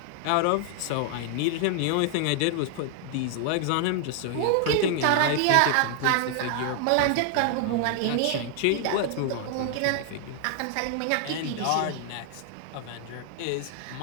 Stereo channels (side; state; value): both; different; correlation 0.00